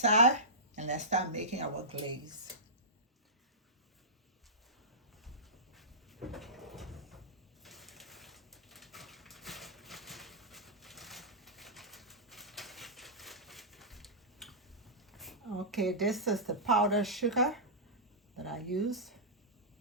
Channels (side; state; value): both; normal; correlation -0.16